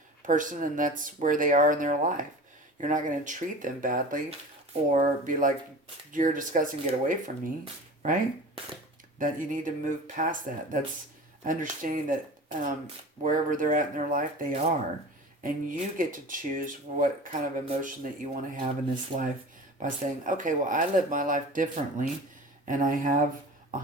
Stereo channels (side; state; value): both; normal; correlation 0.37